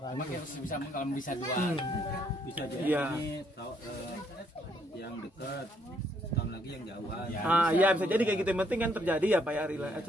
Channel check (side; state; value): both; normal; correlation 0.70